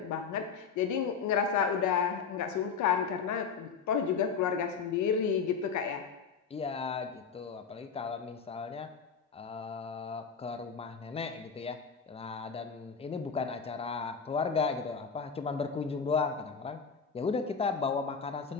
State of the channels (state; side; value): quieter; right; 5.9 dB